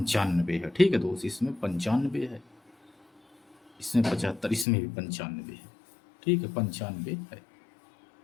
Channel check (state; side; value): drops out; right; at 4.7 s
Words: है। ठीक है दोस्त, इसमें 95 है, इसमें 75, इसमें भी 95 है। ठीक है, 95 है।